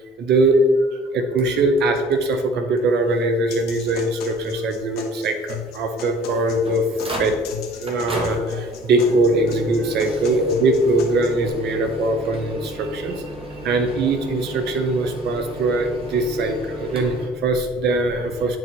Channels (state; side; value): normal; both; correlation 0.50